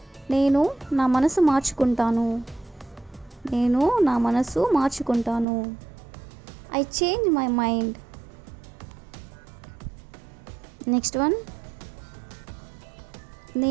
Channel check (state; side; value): drops out; left; at 5.5 s